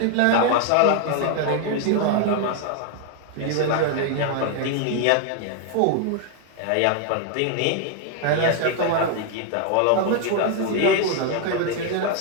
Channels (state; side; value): different; both; correlation 0.00